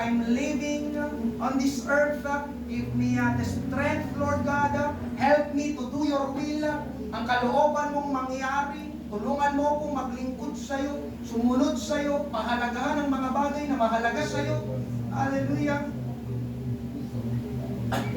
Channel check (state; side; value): identical; both; correlation 1.00